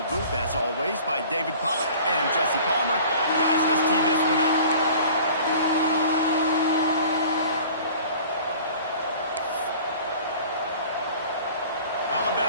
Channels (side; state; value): both; inverted; correlation -0.46